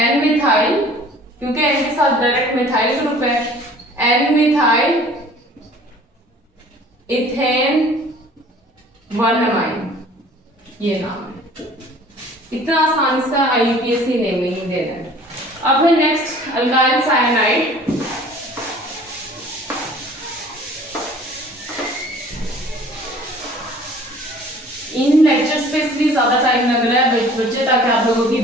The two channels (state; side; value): normal; both; correlation 0.50